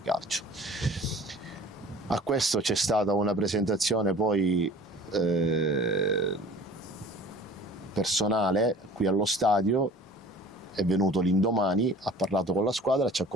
Calcio. A questo c'è stata una presentazione poi personale qui allo stadio. È venuto l'indomani, ha parlato con la squadra, ci ha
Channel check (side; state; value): both; normal; correlation 0.46